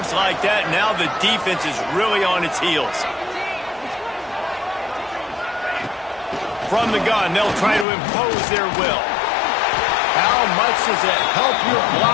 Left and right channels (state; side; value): drops out; right; at 7.9 s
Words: like that, now the defense is really on its heels. From the gun, they'll try to impose their will. How much does it help your